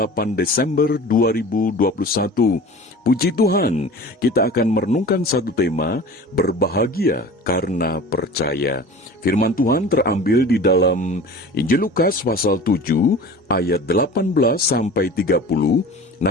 Desember 2021. Puji Tuhan, kita akan merenungkan satu tema, berbahagia karena percaya. Firman Tuhan terambil di dalam Injil Lukas pasal 7 ayat 18 sampai 30.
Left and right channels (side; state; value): both; normal; correlation 0.39